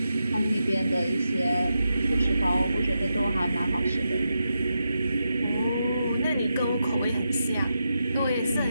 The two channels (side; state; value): both; inverted; correlation -0.87